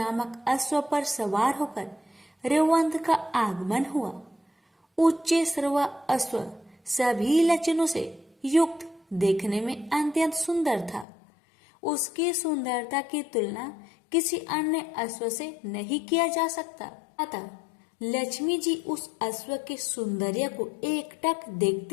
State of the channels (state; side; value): drops out; right; at 11.1 s